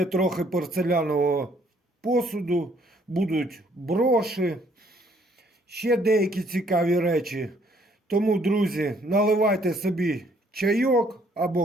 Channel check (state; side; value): normal; both; correlation 0.65